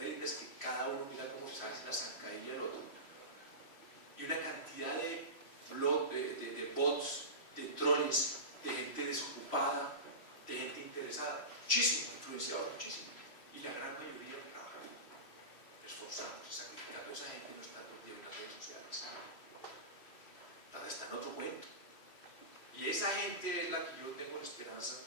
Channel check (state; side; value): late; right; 3.1 ms